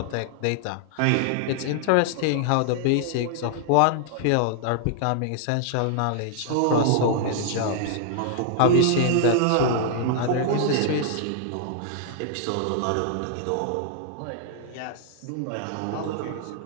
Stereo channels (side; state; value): both; different; correlation 0.00